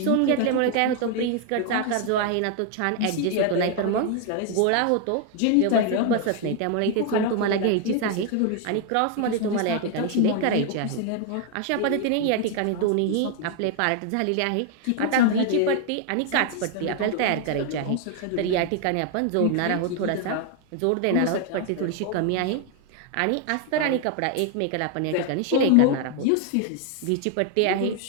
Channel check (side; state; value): both; different; correlation 0.00